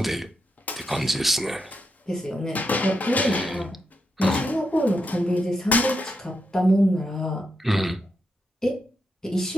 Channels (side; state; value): both; normal; correlation 0.84